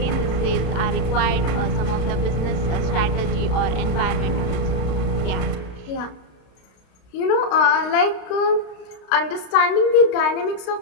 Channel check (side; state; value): right; late; 32 ms